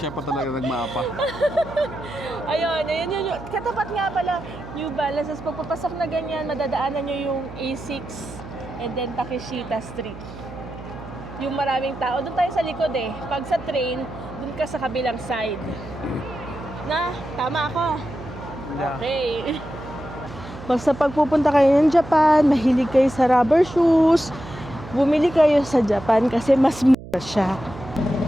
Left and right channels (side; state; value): right; noise; hum, 14 dB below the sound